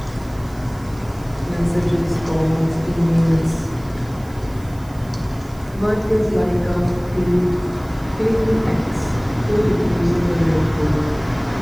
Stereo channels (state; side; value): noise; right; hiss, 25 dB below the sound